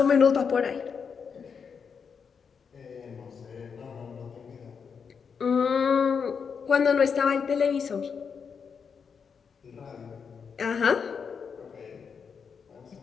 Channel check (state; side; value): quieter; right; 6.2 dB